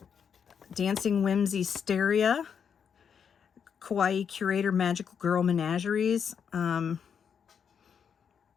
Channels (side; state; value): right; quieter; 7.2 dB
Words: Dancing Whimsy Steria. Kawaii Curator Magical Girl Menageries.